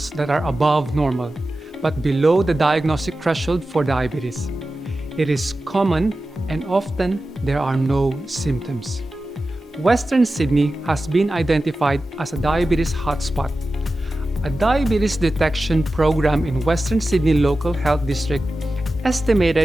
that are above normal, but below the diagnostic threshold for diabetes. It is common and often there are no symptoms. Western Sydney has been identified as a diabetes hotspot. A diabetes detection program in Western Sydney Local Health District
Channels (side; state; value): both; normal; correlation 0.94